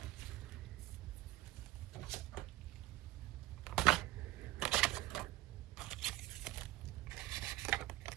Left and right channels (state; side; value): quieter; left; 16.1 dB